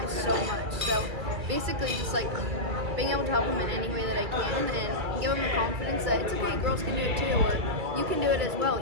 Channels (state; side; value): late; left; 2.3 ms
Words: so much. So basically just like being able to help him in any way that I can and give him the confidence that it's okay, girls can do it too, or you can do it as